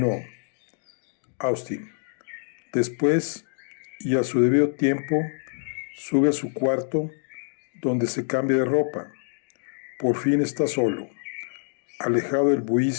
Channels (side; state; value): right; silent; digital silence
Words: Austin. Después, y a su debido tiempo, sube a su cuarto, donde se cambia de ropa. Por fin está solo, alejado del